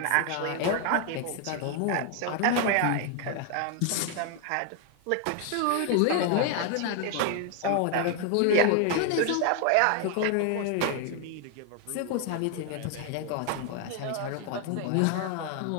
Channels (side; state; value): both; different; correlation 0.00